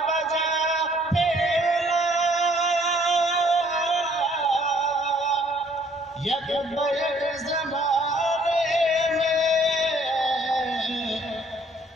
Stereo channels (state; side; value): normal; both; correlation 0.62